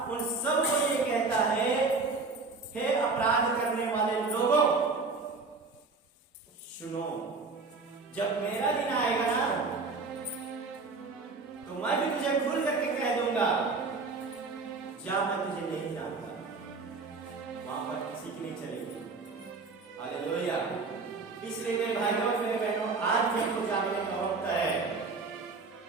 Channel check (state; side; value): quieter; left; 4.1 dB